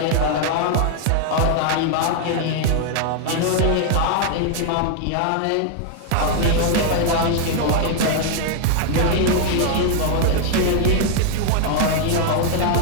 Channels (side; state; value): both; different; correlation 0.00